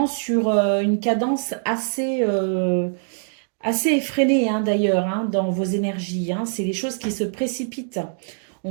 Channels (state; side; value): silent; left; digital silence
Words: sur une cadence assez effrénée d'ailleurs dans vos énergies. C'est les choses qui se précipitent. On